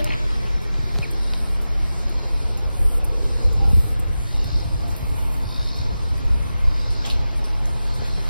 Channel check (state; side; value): inverted; both; correlation -0.94